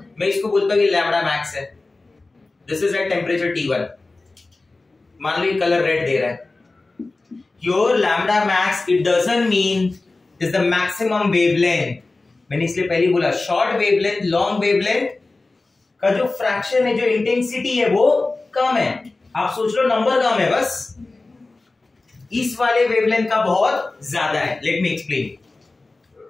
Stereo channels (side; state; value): right; quieter; 3.3 dB